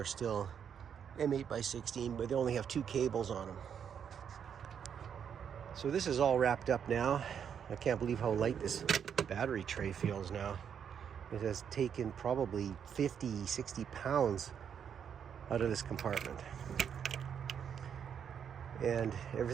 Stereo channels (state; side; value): quieter; left; 7.9 dB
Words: still M8 by 16, but they only have 2 cables on them. So this is all wrapped up now. I can't believe how light this battery tray feels now. It has taken probably 50, 60 pounds out of this compartment. And